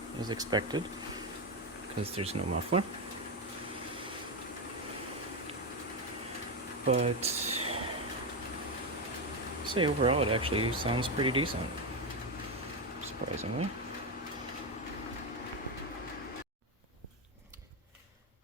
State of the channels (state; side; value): normal; both; correlation 0.10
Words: as expected, because there's no muffler. But, say overall it actually sounds pretty decent, surprisingly.